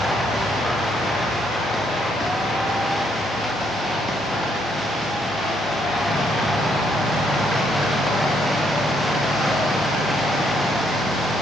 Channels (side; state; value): both; normal; correlation 0.72